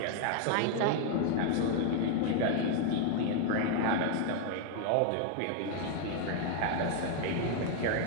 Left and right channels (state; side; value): different; both; correlation 0.00